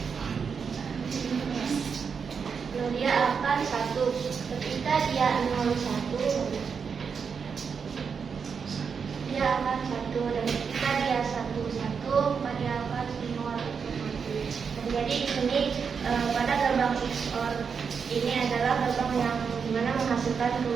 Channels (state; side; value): quieter; left; 6.1 dB